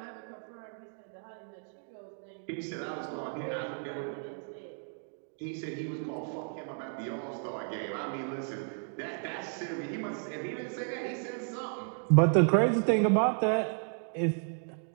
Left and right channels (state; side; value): silent; left; 56 dB below the other